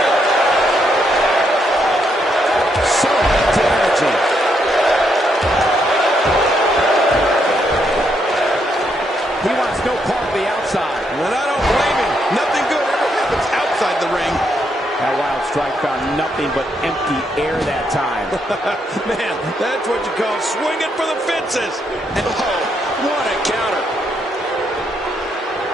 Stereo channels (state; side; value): normal; both; correlation 0.77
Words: So much energy. He wants no part of the outside. And I don't blame him. Nothing good ever happens outside the ring. That wild strike found nothing but empty air that time. Man, that's what you call swinging for the fences. Oh, what a counter.